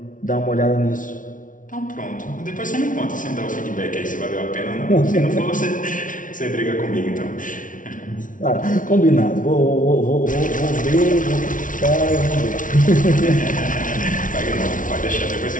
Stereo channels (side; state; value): right; late; 0.38 ms